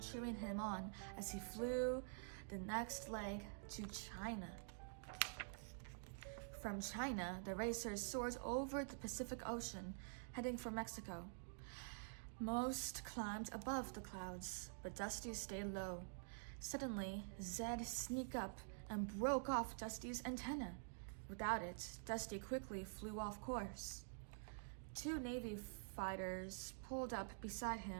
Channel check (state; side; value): silent; left; digital silence